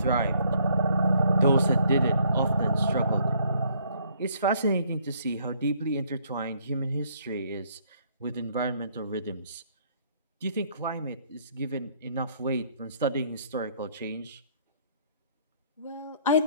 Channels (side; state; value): both; inverted; correlation -0.65